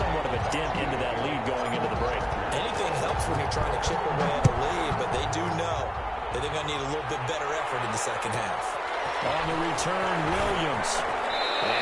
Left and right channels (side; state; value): both; identical; correlation 1.00